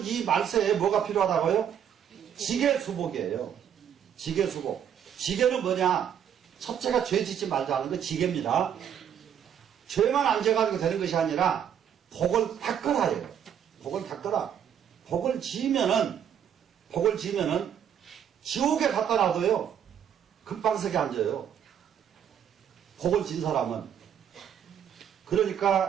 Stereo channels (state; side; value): quieter; left; 9.0 dB